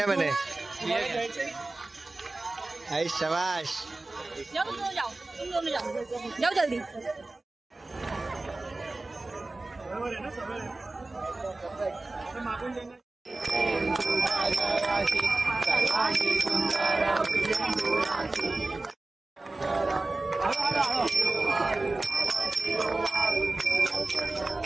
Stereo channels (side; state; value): left; quieter; 3.0 dB